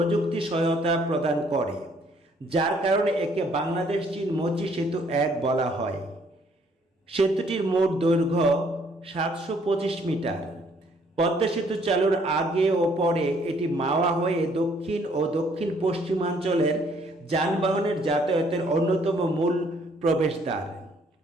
সহায়তা প্রদান করে, যার কারণে একে বাংলাদেশ চীন মৈত্রী সেতু ১ বলা হয়। সেতুটির মোট দৈর্ঘ্য ৭২৫ মিটার। পদ্মা সেতু চালুর আগে ও পরে এটি মাওয়া হয়ে দক্ষিণ ও দক্ষিণ পশ্চিমাঞ্চলের যানবাহনের যাতায়াতের অন্যতম মূল প্রবেশদ্বার।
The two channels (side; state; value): both; normal; correlation 0.64